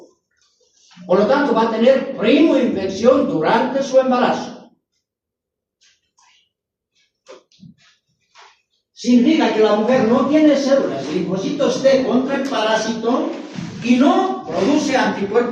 Por lo tanto, va a tener primoinfección durante su embarazo. Significa que la mujer no tiene células de linfocitos T contra el parásito y no produce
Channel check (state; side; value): identical; both; correlation 1.00